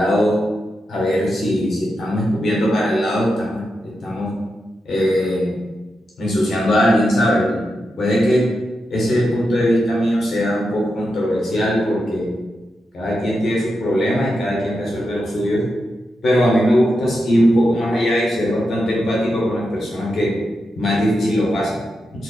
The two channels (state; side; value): normal; both; correlation 0.87